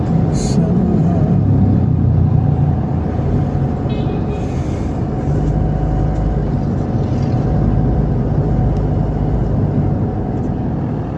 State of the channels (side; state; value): both; identical; correlation 1.00